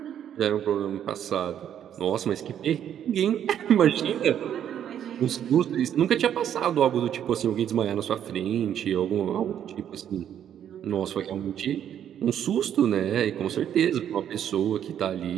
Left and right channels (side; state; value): left; quieter; 9.8 dB